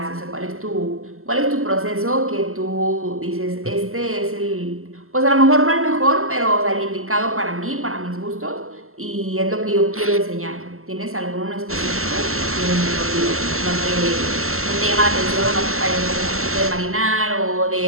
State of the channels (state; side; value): late; left; 0.62 ms